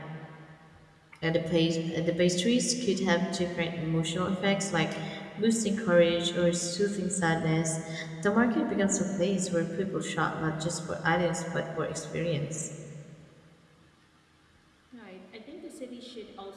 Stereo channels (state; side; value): identical; both; correlation 1.00